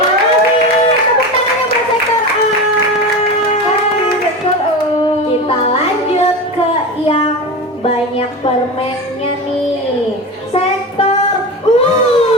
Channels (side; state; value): both; normal; correlation 0.25